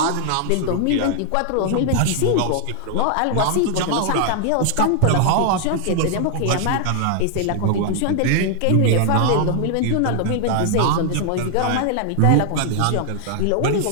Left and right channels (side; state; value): both; different; correlation 0.00